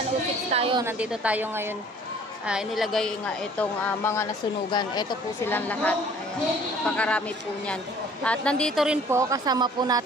tayo. Nandito tayo ngayon. Inilagay nga itong mga nasunugan. Ito po silang lahat. Ayan, napakarami po niyan. At nandito rin po, kasama po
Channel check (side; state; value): both; normal; correlation 0.53